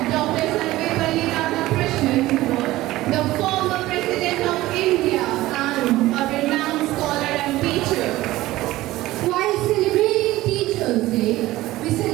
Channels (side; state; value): left; quieter; 17.1 dB